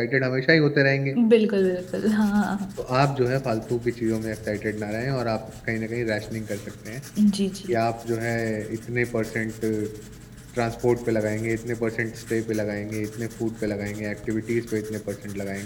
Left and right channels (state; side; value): identical; both; correlation 1.00